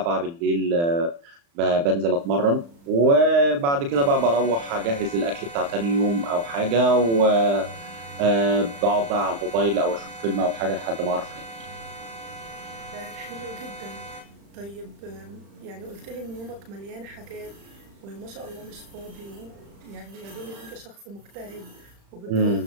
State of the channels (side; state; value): left; late; 35 ms